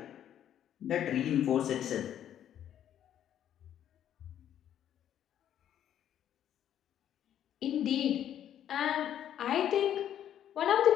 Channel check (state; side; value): quieter; right; 10.5 dB